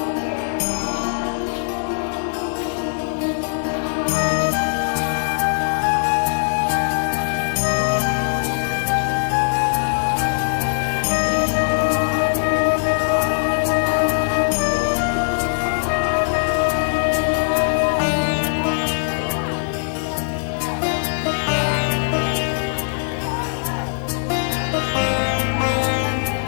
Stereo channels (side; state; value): right; silent; 62 dB below the other